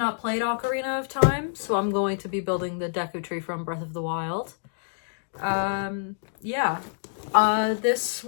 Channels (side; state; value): right; silent; digital silence